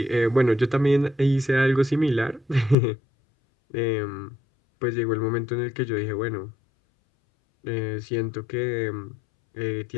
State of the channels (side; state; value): right; drops out; at 2.8 s